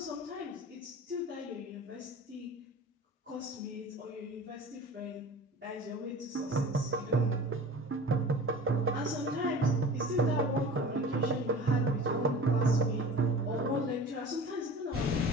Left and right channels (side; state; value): both; normal; correlation 0.39